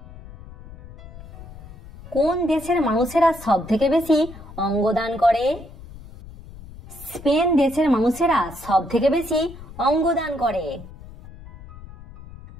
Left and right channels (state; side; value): noise; left; rumble, 17 dB below the sound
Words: কোন দেশের মানুষেরা সব থেকে বেশি অঙ্গদান করে? স্পেন দেশের মানুষেরা সব থেকে বেশি অঙ্গদান করে।